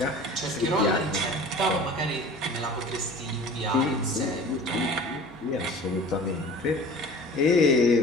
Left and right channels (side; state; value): both; normal; correlation 0.42